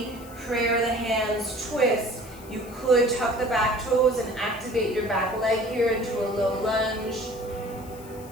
prayer the hands, twist. You could tuck the back toes and activate your back leg here into a low lunge.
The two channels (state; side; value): noise; left; hiss, 21 dB below the sound